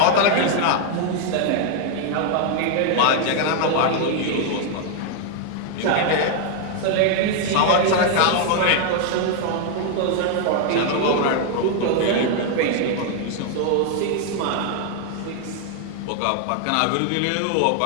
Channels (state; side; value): different; both; correlation 0.00